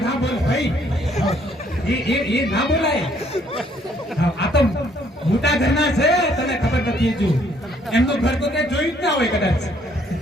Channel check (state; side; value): normal; both; correlation 0.65